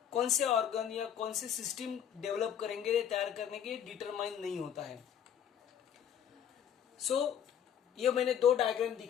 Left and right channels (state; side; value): quieter; right; 9.0 dB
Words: कौन से ऑर्गन या कौन से सिस्टम डेवलप करेंगे तैयार करने के डिटरमाइन नहीं होता है. सो ये मैंने 2 डायग्राम